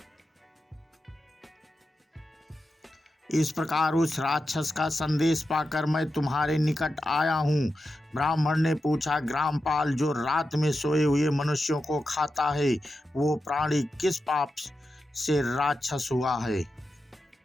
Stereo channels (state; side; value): normal; both; correlation 0.90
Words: इस प्रकार उस राक्षस का संदेश पाकर मैं तुम्हारे निकट आया हूँ। ब्राह्मण ने पूछा, ग्रामपाल, जो रात में सोए हुए मनुष्यों को खाता है, वो प्राणी किस पाप से राक्षस हुआ है?